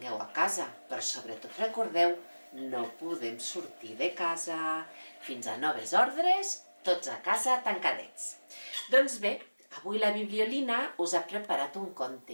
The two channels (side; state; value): both; inverted; correlation -1.00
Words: a casa. Però sobretot recordeu, no podem sortir de casa fins a noves ordres, tots a casa tancadets. Doncs bé, avui la Bibliolina us ha preparat un